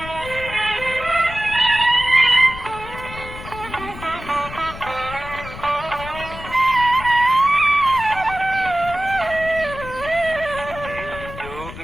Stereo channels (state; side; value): noise; left; rumble, 13 dB below the sound